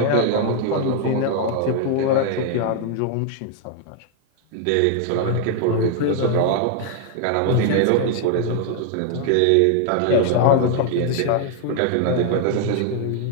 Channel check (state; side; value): different; both; correlation 0.00